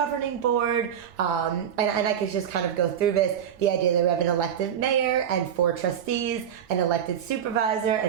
board, and I could just kind of go through this. The idea that we have an elected mayor and 4 trustees, an elected supervisor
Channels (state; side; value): quieter; left; 8.9 dB